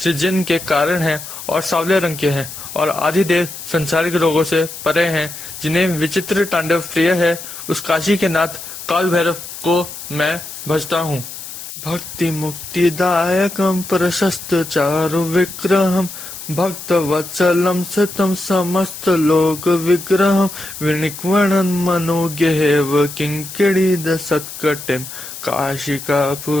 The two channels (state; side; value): noise; left; hiss, 11 dB below the sound